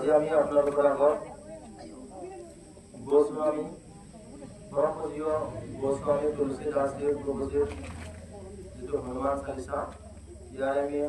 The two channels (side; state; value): both; identical; correlation 1.00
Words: আমি আপোনালোকৰ আগত গোস্বামী পৰমপূজ্য গোস্বামী তুলসীদাসদেৱ প্ৰভুজীৰ যিটো হনুমান চালিচা ইয়াৰ আমি